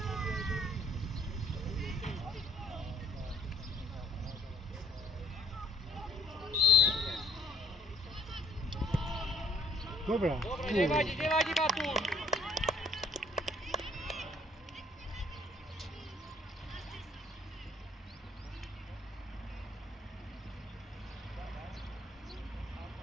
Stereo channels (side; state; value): both; normal; correlation 0.61